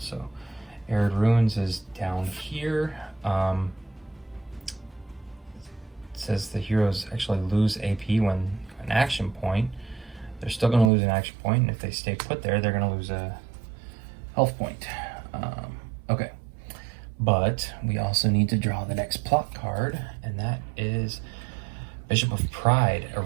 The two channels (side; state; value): left; drops out; at 10.9 s